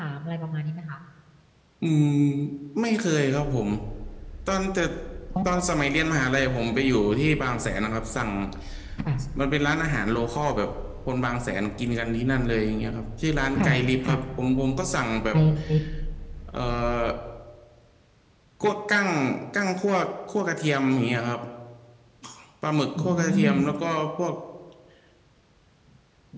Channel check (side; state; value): both; identical; correlation 1.00